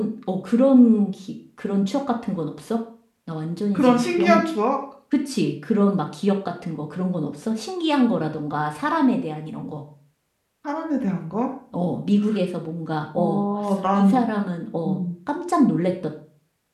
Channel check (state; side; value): identical; both; correlation 1.00